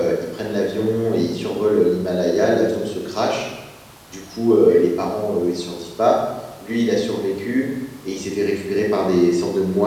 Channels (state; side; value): identical; both; correlation 1.00